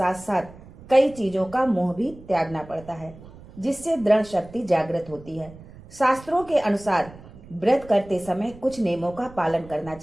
साथ कई चीजों का मोह भी त्यागना पड़ता है, जिससे दृढ़ शक्ति जागृत होती है। शास्त्रों के अनुसार व्रत करते समय कुछ नियमों का पालन करना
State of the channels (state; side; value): noise; right; rumble, 19 dB below the sound